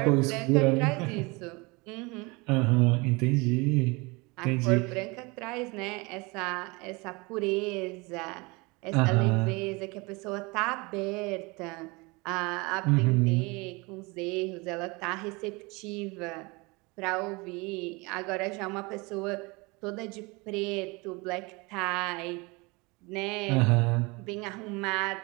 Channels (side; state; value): left; quieter; 26.3 dB